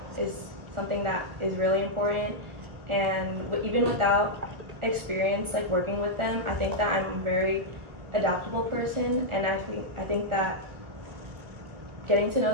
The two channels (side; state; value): left; late; 1.4 ms